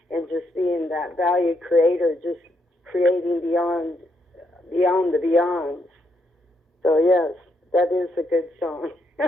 and just being that value creator, just creating beyond the beyonds. So yes, that is a good song.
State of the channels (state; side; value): normal; both; correlation 0.77